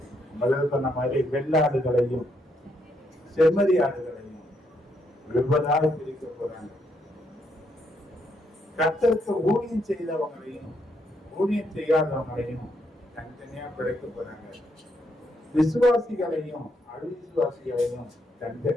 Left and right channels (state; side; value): normal; both; correlation 0.76